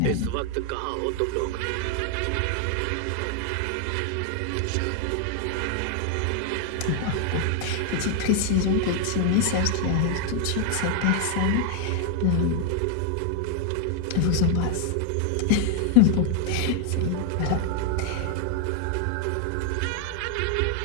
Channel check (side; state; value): both; different; correlation 0.00